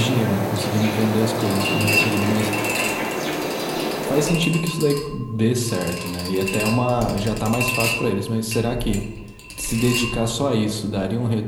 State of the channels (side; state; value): both; identical; correlation 1.00